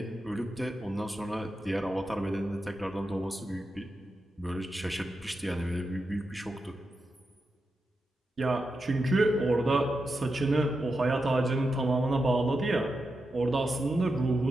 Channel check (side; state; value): both; normal; correlation 0.88